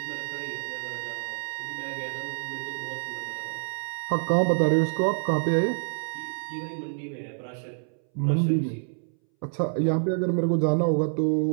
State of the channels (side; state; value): left; silent; 60 dB below the other